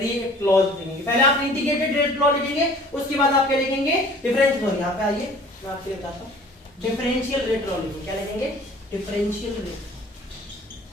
लॉ लिखेंगे। पहले आप इंटीग्रेटेड रेट लॉ लिखेंगे, उसके बाद आप क्या लिखेंगे? Differential law. यहां पे आइए मैं आपको बताता हूं, डिफरेंशियल रेट लॉ लिखेंगे। क्या लिखेंगे? डिफरेंशियल रेट,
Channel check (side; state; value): both; normal; correlation 0.49